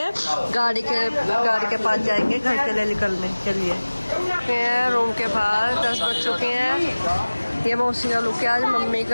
गाड़ी के पास जाएंगे घर के लिए निकलने के लिए। रूम के बाहर 10 बज चुके हैं। ये मौसी का लुक है आज, मम्मी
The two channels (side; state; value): both; inverted; correlation -1.00